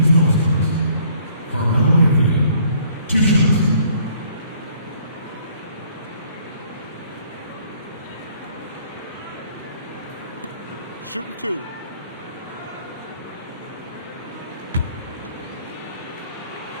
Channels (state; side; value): inverted; both; correlation -0.61